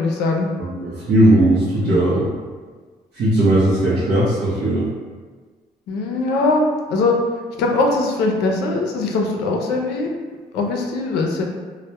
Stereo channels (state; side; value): normal; both; correlation 0.58